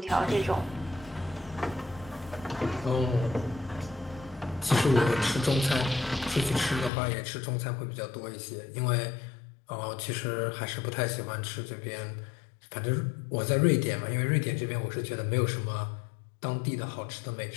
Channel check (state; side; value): drops out; right; at 6.9 s